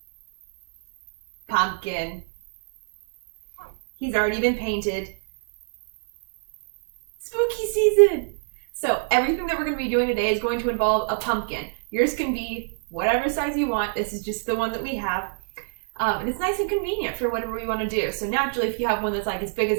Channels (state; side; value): silent; left; digital silence